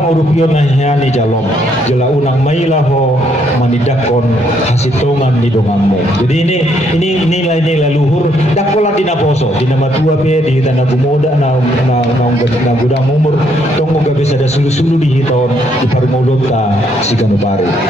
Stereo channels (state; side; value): normal; both; correlation 0.71